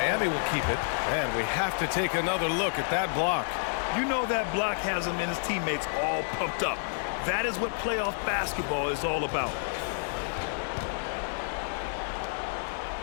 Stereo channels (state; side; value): silent; right; digital silence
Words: will keep it. And we have to take another look at that block. You know that block has him and his teammates all pumped up. That is what playoff basketball is all about.